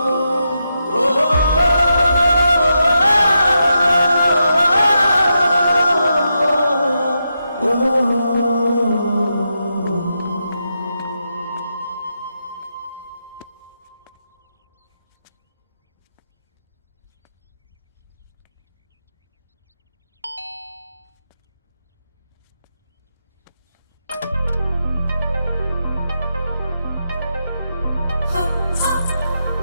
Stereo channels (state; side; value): inverted; both; correlation -0.85